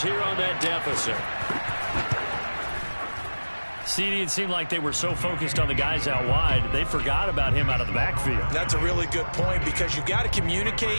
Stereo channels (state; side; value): inverted; both; correlation -1.00